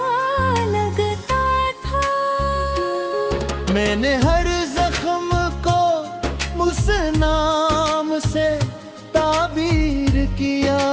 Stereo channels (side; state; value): both; identical; correlation 1.00